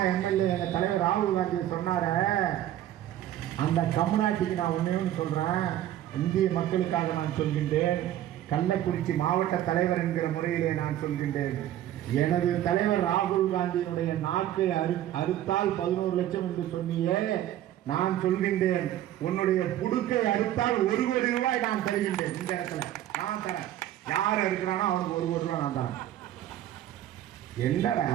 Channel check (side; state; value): left; quieter; 12.6 dB